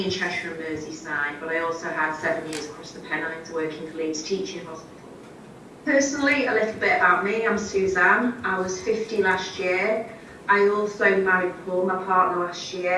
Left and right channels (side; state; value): both; identical; correlation 1.00